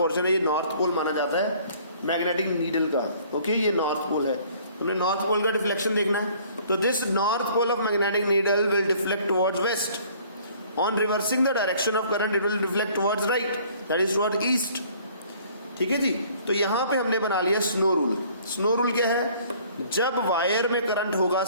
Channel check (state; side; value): inverted; both; correlation -0.56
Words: है, ये नॉर्थ पोल माना जाता है मैग्नेटिक नीडल का। ओके, ये नॉर्थ पोल है। उन्हें नॉर्थ पोल का डिफ्लेक्शन देखना है। तो this north pole of magnetic needle will deflect towards west. On reversing the direction of current it will deflect towards right, that is towards east. ठीक है जी, तो यहां पे हमने बना लिया स्नो रूल। स्नो रूल क्या है? जब वायर में करंट होगा